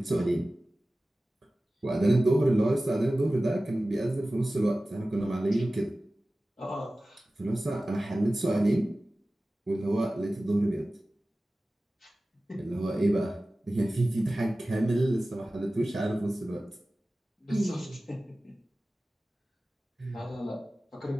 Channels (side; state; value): both; normal; correlation 0.96